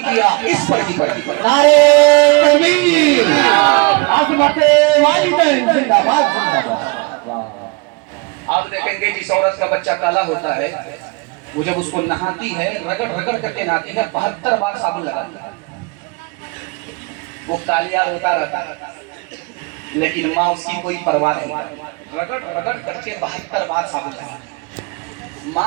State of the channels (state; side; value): quieter; left; 28.6 dB